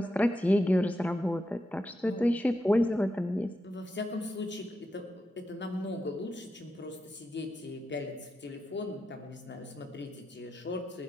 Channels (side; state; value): both; normal; correlation 0.87